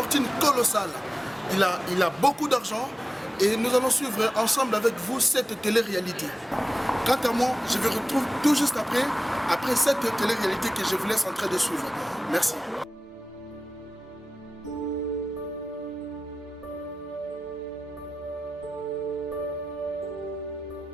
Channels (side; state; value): both; normal; correlation 0.95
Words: colossale. Il a beaucoup d'argent et nous allons suivre ensemble avec vous cette télé-réalité. Quant à moi, je vous retrouve tout juste après cette télé-réalité que je vous laisse en train de suivre. Merci.